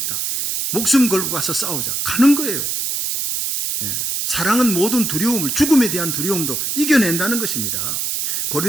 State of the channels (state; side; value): noise; right; hiss, 1 dB below the sound